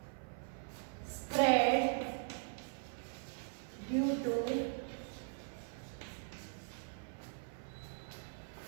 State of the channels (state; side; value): silent; left; 51 dB below the other